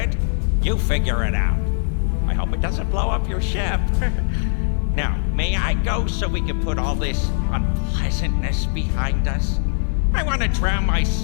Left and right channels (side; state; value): right; silent; 64 dB below the other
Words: You figure it out. I hope it doesn't blow up your ship. Now, may I go so we can put all this unpleasantness behind us? I want to drown my